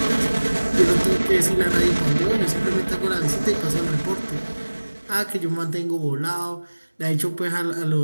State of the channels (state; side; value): inverted; both; correlation -1.00